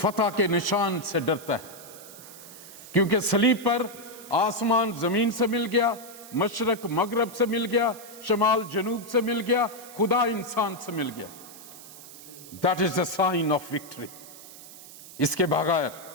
के निशान से डरता है, क्योंकि सलीब पर आसमान जमीन से मिल गया, मशरक मगरब से मिल गया, शमाल जनूब से मिल गया, खुदा इंसान से मिल गया। That is the sign of victory. इसके बगैर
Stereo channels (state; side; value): noise; right; hiss, 17 dB below the sound